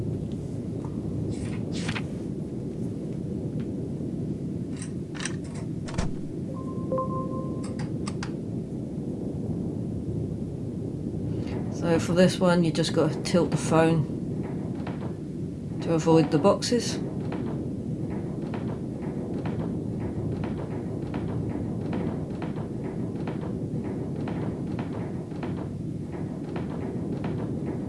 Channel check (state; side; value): identical; both; correlation 1.00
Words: So for this one, you just got to tilt the phone to avoid the boxes.